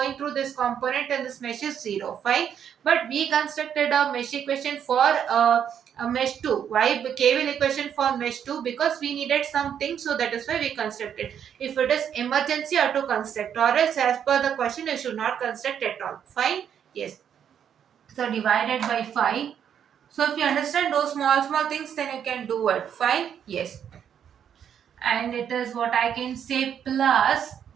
through this component and this mesh is 0. Fine. But we constructed a mesh equation for a mesh 2. Why KVL equation for mesh 2? Because we needed something, so that is why we constructed. If it is emergency, you have to construct, or else as per the question you should not construct at all. Fine. Yes. So divided by 5. So if you understand those small things, then you can do it. Fine. Yes. And it is what I can say plus,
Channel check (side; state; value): left; quieter; 8.7 dB